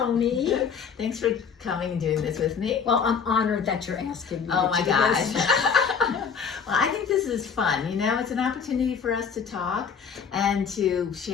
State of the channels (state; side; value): quieter; right; 6.4 dB